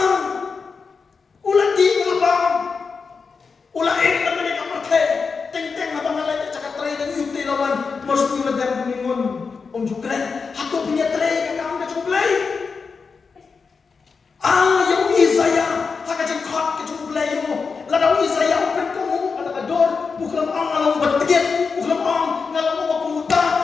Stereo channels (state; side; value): quieter; right; 5.1 dB